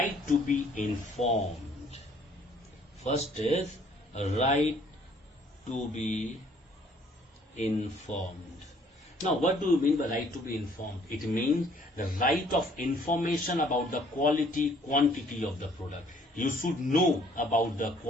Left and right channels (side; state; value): both; normal; correlation 0.61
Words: to be informed. First is right to be informed. Now, what do you mean by right to be informed? It means the right of information about the quality, quantity of the product. You should know about the